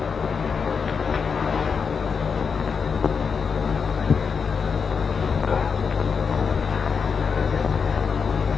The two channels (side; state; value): right; quieter; 5.9 dB